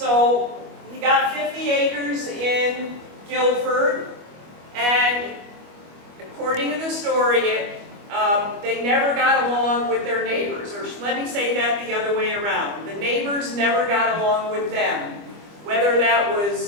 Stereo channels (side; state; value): left; late; 25 ms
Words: he got 50 acres in Guilford, and according to the story, they never got along with their neighbors, or let me say that the other way around. The neighbors never got along with them. Whether that